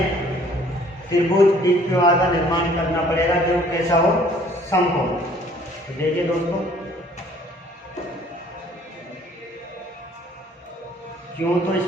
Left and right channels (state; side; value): normal; both; correlation 0.57